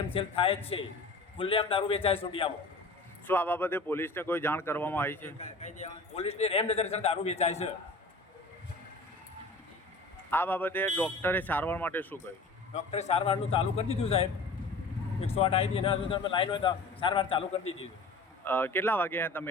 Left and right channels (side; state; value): right; quieter; 3.2 dB